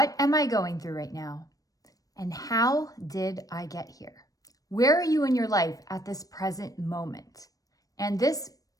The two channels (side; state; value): right; late; 0.17 ms